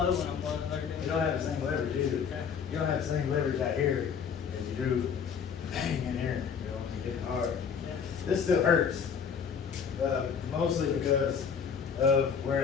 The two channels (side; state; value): right; quieter; 6.7 dB